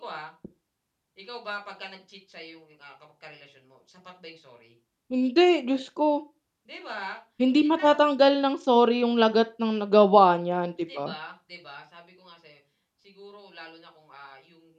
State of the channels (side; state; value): both; identical; correlation 1.00